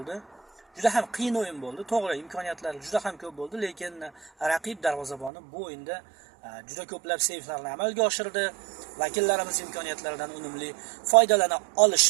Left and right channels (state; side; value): drops out; left; at 5.3 s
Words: Juda ham qiyin o'yin bo'ldi. To'g'ri, imkoniyatlar juda ham ko'p bo'ldi, lekin raqib darvozaboni bu o'yinda juda ko'plab seyflarni amalga oshirdi. Vakillarimiz imkoniyatlaridan unumli foydalana